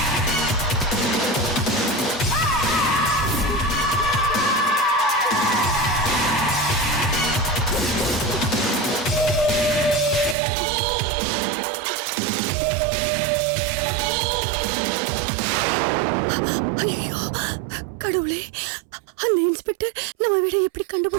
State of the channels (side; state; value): left; drops out; at 10.4 s